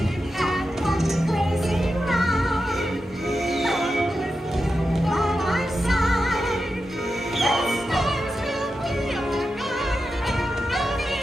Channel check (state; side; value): normal; both; correlation 0.90